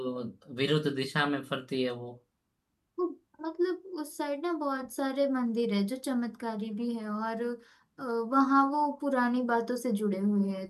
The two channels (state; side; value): identical; both; correlation 1.00